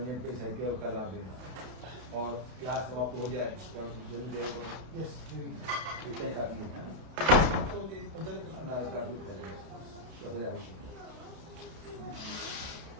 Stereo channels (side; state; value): left; late; 31 ms